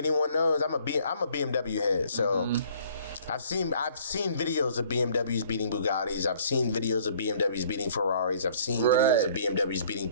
knows I'm a BMW head, so I've seen videos of BMWs beating Bugattis. I've seen videos of BMWs beating Ferraris. I've seen videos of BMWs beating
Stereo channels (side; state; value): both; inverted; correlation -0.58